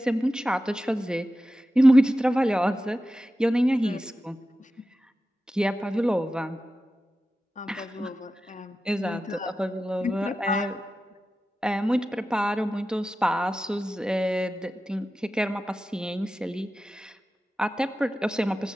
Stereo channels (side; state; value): both; normal; correlation 0.93